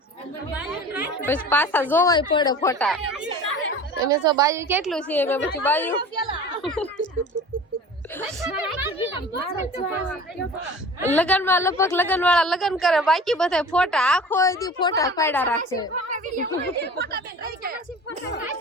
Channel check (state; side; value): normal; both; correlation 0.39